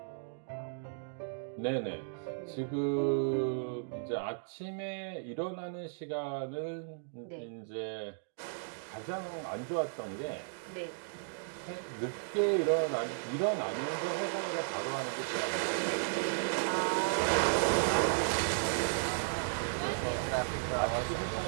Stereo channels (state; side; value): silent; left; digital silence